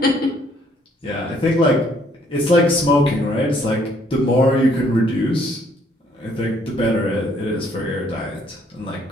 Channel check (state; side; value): normal; both; correlation 0.65